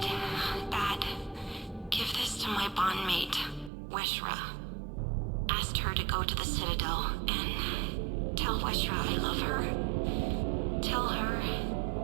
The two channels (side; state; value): left; drops out; at 3.7 s